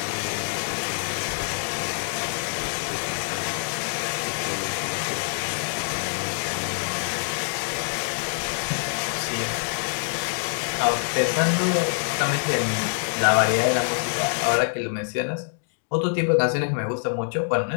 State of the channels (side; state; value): right; silent; digital silence